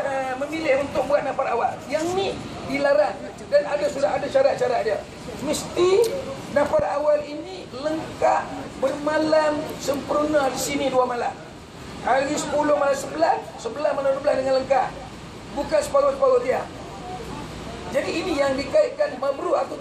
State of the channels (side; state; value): both; identical; correlation 1.00